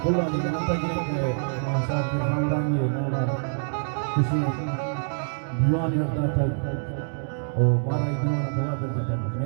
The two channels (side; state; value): left; silent; 61 dB below the other